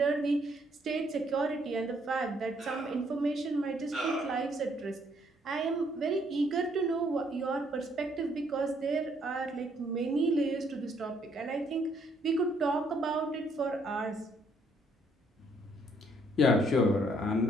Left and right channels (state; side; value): normal; both; correlation 0.68